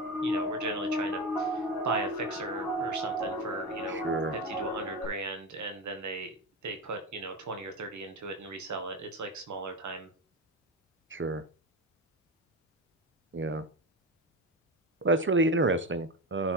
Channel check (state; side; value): normal; both; correlation 0.20